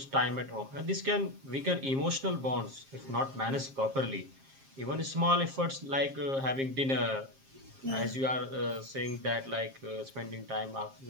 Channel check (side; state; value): left; late; 7.5 ms